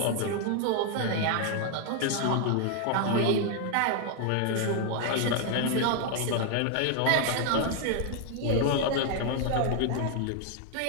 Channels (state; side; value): different; both; correlation 0.00